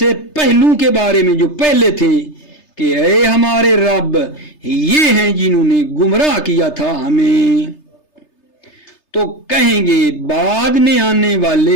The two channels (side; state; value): right; late; 3.3 ms